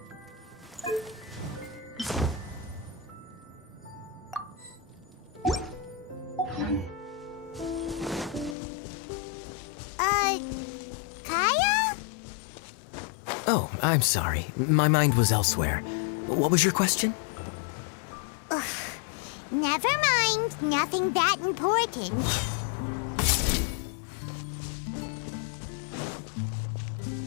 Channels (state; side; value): drops out; right; at 8.6 s